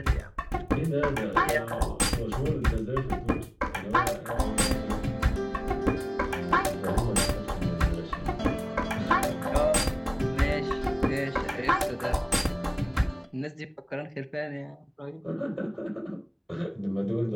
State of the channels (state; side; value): identical; both; correlation 1.00